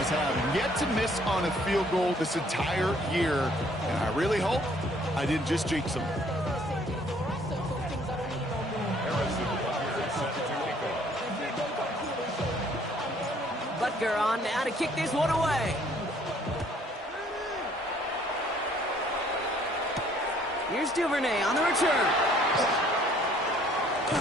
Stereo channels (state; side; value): normal; both; correlation 0.61